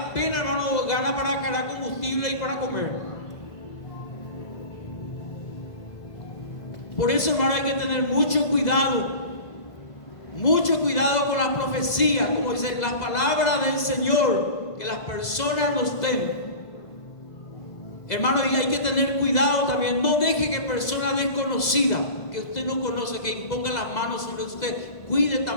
hermano, gana para cargar combustible y para comer? Por eso, hermano, hay que tener mucho cuidado con la profecía, como dice la palabra del Señor, que las personas nos den. Hermano, y hay que tener cuidado también. No deje que personas desconocidas, que usted no conoce, que impongan las manos sobre usted. Cuide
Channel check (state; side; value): late; right; 2.0 ms